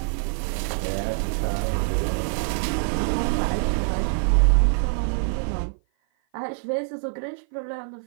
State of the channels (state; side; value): silent; left; 55 dB below the other